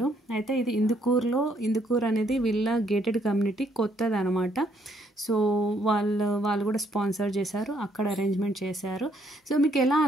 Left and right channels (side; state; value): both; normal; correlation 0.69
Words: అయితే ఇది ఇందుకూరు అనేది వీళ్ళ గేటెడ్ కమ్యూనిటీ కొత్తది అనమాట. సో వాళ్ళు కూడా స్పాన్సర్ చేశారు, అక్కడ అరేంజ్మెంట్ చేశారు. సో మీకు ఎలా